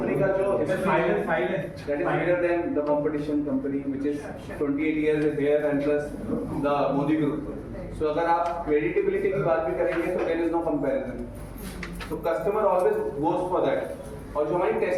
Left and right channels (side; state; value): both; identical; correlation 1.00